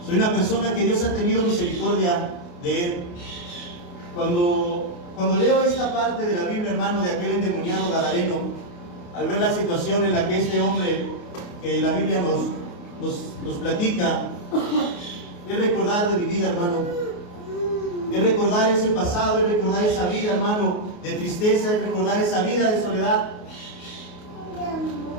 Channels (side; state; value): right; late; 28 ms